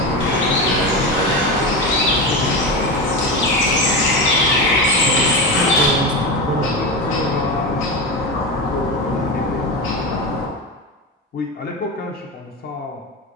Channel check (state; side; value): normal; both; correlation 0.20